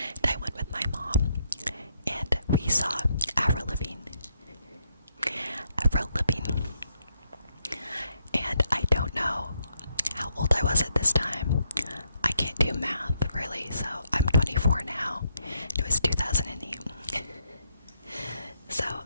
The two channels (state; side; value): inverted; both; correlation -0.76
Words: I went with my mom, and we saw Avril Lavigne. And I don't know how old I was at this time. I can't do math, really, so I'm 24 now. It was 2008. So,